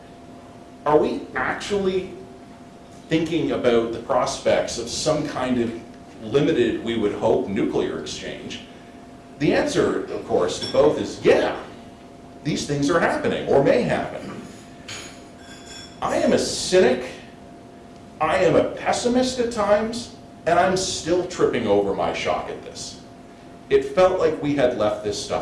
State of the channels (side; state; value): both; identical; correlation 1.00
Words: Are we actually thinking about the prospects of some kind of limited, we would hope, nuclear exchange? The answer, of course, to both is yeah, these things are happening or may happen. I am a cynic, I am a pessimist at times, and I'm still tripping over my shock at this. It felt like we had left this